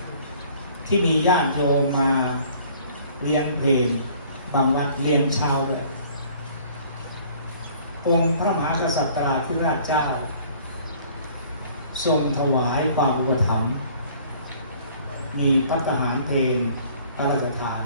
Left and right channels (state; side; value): inverted; both; correlation -0.54